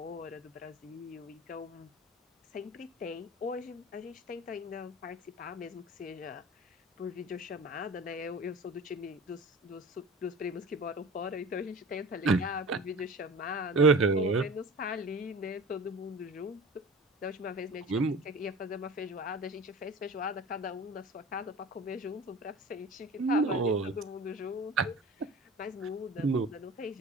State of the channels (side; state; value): both; normal; correlation 0.37